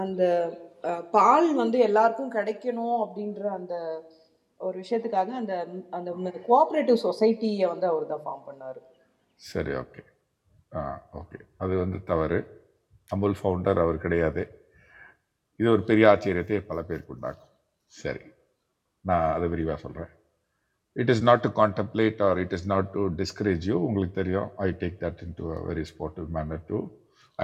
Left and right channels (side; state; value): both; identical; correlation 1.00